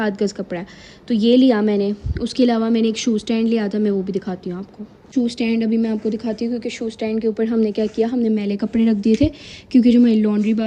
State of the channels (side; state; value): both; identical; correlation 1.00